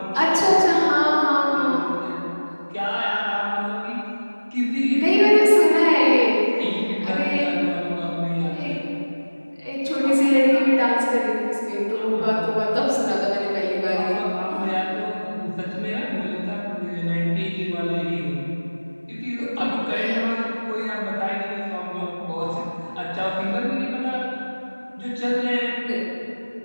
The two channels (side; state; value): both; inverted; correlation -1.00